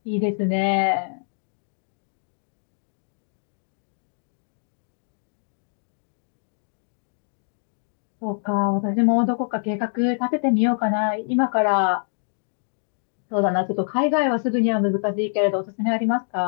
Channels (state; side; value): silent; right; digital silence